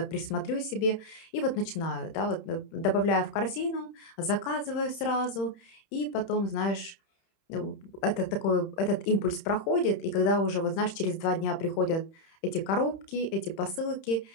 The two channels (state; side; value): late; right; 31 ms